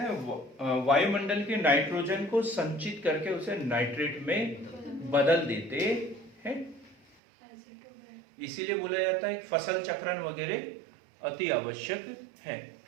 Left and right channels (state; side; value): drops out; left; at 7.2 s